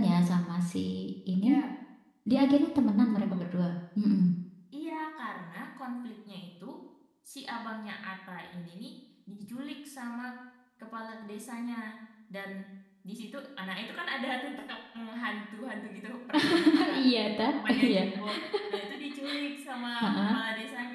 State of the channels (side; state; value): both; identical; correlation 1.00